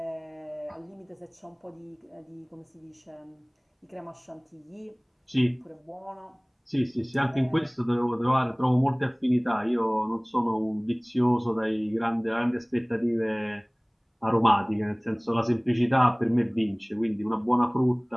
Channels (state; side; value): identical; both; correlation 1.00